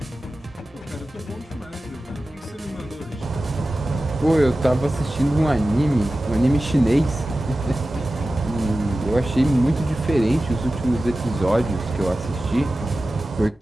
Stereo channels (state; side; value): normal; both; correlation 0.95